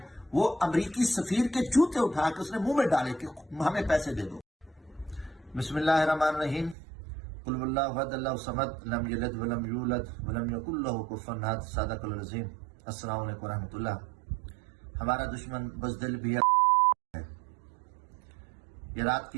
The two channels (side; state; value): left; drops out; at 6.8 s